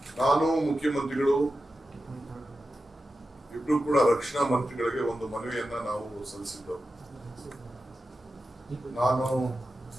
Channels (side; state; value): both; normal; correlation 0.92